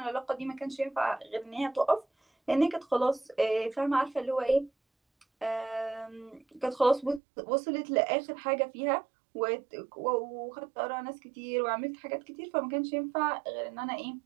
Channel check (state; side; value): drops out; left; at 7.2 s